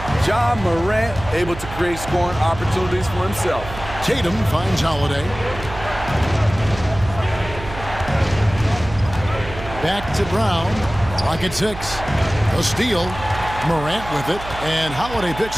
John Morant able to create scoring opportunities for himself. Tatum finds Holiday. Back to Brown. Clock at 6. A steal. Morant with it. And Holiday picks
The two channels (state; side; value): noise; right; hum, 12 dB below the sound